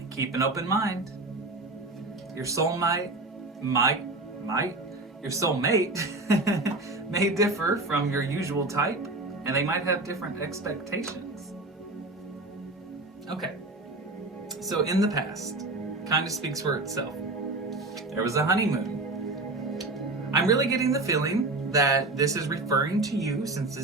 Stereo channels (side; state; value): left; quieter; 3.0 dB